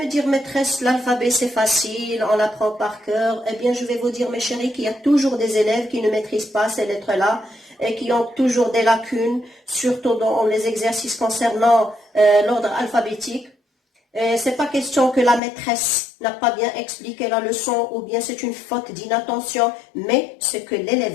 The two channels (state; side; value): drops out; right; at 15.4 s